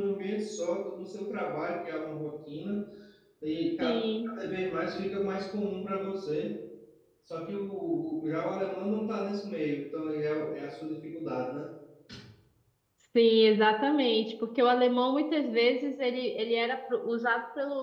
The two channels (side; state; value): both; identical; correlation 1.00